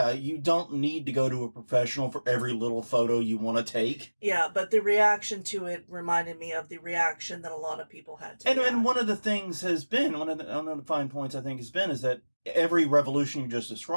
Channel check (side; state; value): both; inverted; correlation -1.00